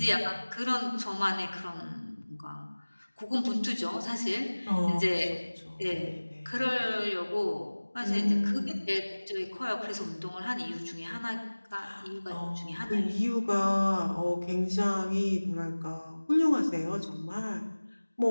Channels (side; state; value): both; inverted; correlation -1.00